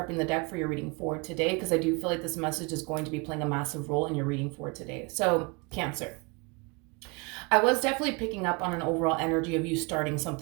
the deck for your reading for today, because I do feel like this message is going to be playing a massive role in your reading for today. So, Cancer, I was definitely picking up on an overall energy of you starting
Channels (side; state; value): left; quieter; 29.4 dB